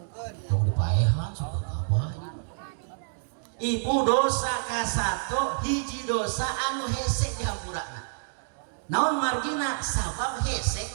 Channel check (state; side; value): silent; left; digital silence